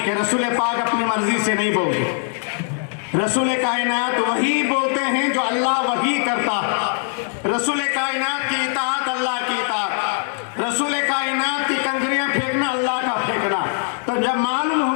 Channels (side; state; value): right; silent; 62 dB below the other